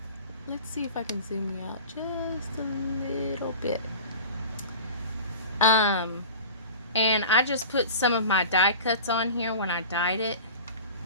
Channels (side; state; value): both; inverted; correlation -0.37